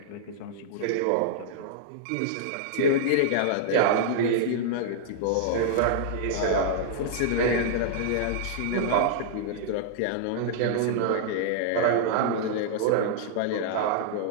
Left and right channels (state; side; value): different; both; correlation -0.01